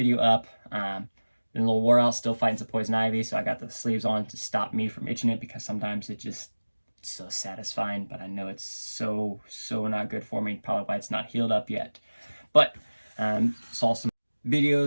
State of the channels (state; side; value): inverted; both; correlation -1.00